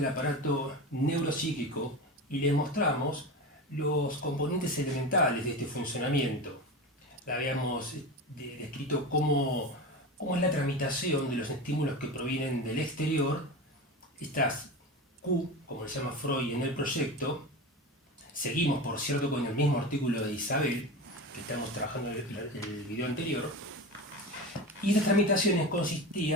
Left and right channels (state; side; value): normal; both; correlation 0.26